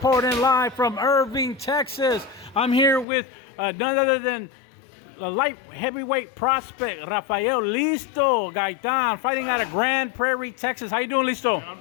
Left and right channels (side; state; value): right; drops out; at 3.1 s